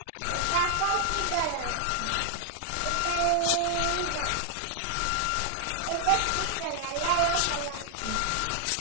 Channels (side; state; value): both; different; correlation 0.00